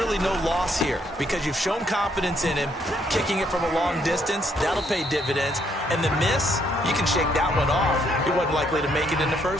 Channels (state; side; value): normal; both; correlation 0.71